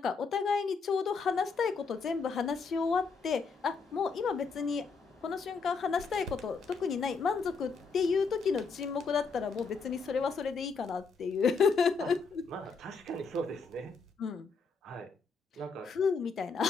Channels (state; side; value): quieter; right; 4.9 dB